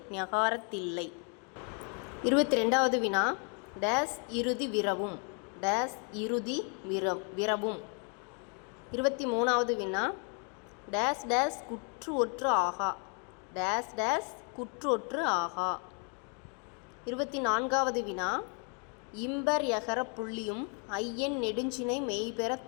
ஞகாரத்தில்லை. 22வது வினா, டேஸ் இறுதி விரவும். டேஸ் இறுதி விரவும். 23வது வினா, டேஸ் டேஸ் குற்று ஒற்று ஆகா. டேஸ் டேஸ் குற்று ஒற்று ஆகா. 24வது வினா, இம்பர் யகர புள்ளியும் ஐயன் நெடுஞ்சினை மெய்பெற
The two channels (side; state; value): right; quieter; 39.4 dB